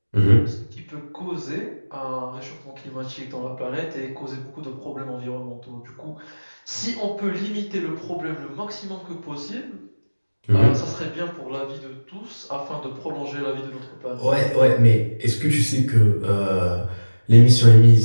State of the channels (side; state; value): both; inverted; correlation -1.00